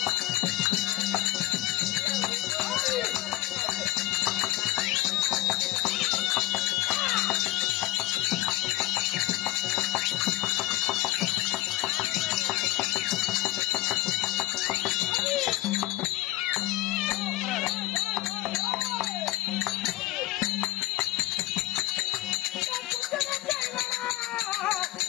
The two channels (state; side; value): quieter; right; 16.6 dB